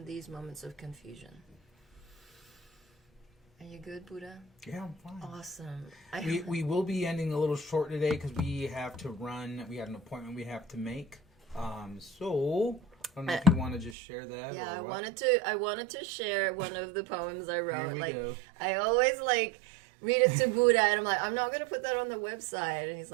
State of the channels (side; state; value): left; drops out; at 14.0 s